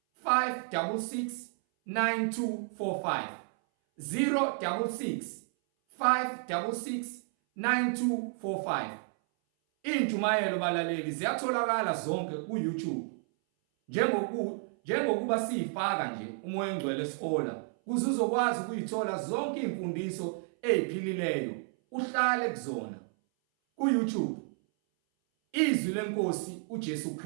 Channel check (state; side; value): silent; left; 57 dB below the other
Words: 566 9245 066 566 9245. Injumayelo balaleli ziyatholakala zonke ku-YouTube. Njengokuba siyifaka nje umoya engcwele esihola kuze uzokwazi ukuyithola zonke imfundiso eziphilileyo uhlale kuzona. Ku-YouTube izwi lenkosi uJesu